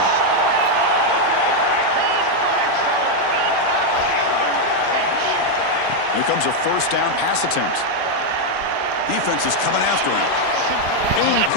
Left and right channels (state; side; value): different; both; correlation 0.01